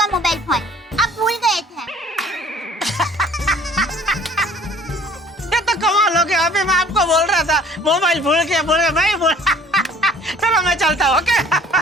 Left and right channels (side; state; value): both; normal; correlation 0.53